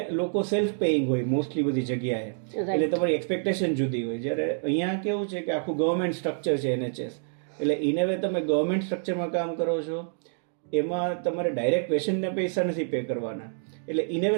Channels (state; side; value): silent; left; digital silence